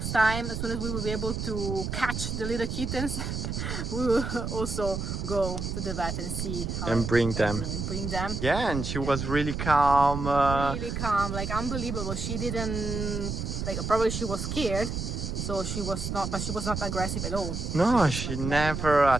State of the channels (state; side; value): noise; right; rumble, 3 dB below the sound